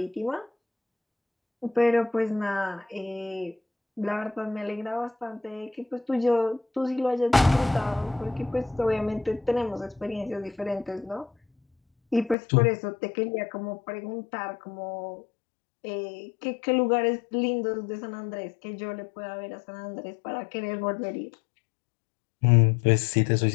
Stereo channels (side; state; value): right; drops out; at 12.4 s